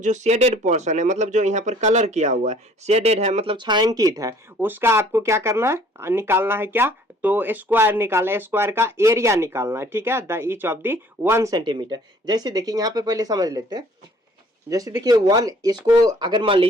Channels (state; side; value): normal; both; correlation 0.56